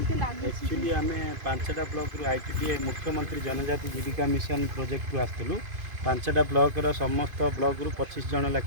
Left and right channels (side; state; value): left; late; 2.5 ms